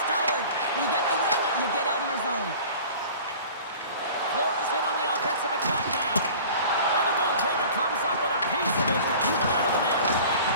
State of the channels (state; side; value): inverted; both; correlation -0.43